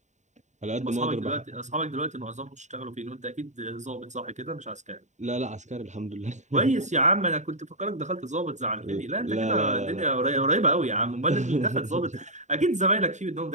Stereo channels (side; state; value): left; late; 0.34 ms